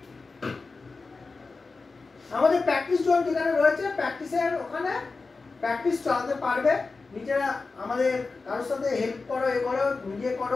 আমাদের প্র্যাকটিস জোন যেখানে রয়েছে, প্র্যাকটিসের ওখানে প্র্যাকটিস চালাতে পারবে, নিজেরা আমাদের কারোর সাথে হেল্প করো, এ করো, নিজে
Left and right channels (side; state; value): right; quieter; 4.1 dB